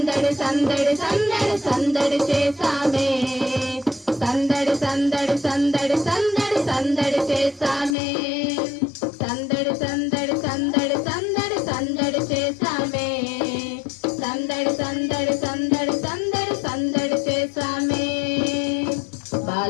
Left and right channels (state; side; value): drops out; right; at 8.0 s